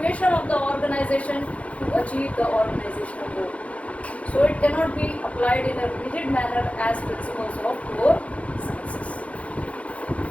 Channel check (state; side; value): late; right; 0.064 ms